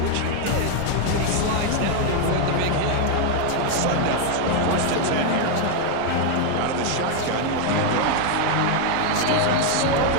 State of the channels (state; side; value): different; both; correlation 0.00